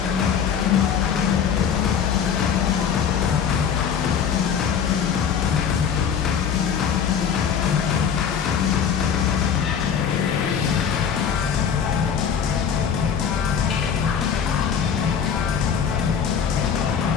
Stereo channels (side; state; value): right; quieter; 7.5 dB